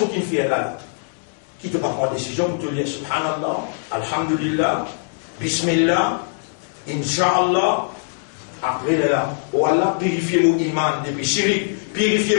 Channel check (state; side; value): silent; right; digital silence